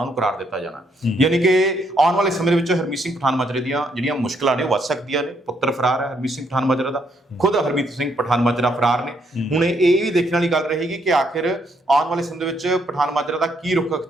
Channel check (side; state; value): both; normal; correlation 0.73